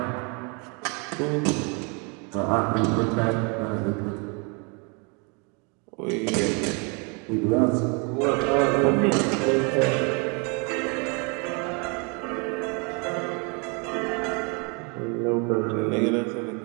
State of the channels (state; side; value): quieter; left; 33.4 dB